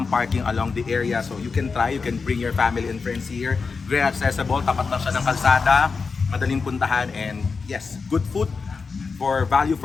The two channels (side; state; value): right; quieter; 4.8 dB